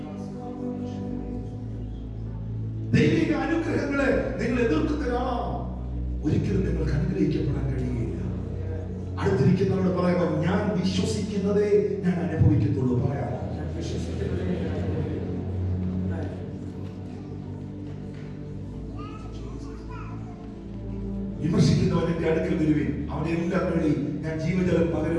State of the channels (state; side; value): identical; both; correlation 1.00